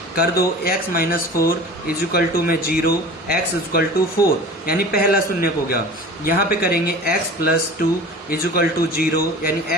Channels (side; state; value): both; normal; correlation 0.39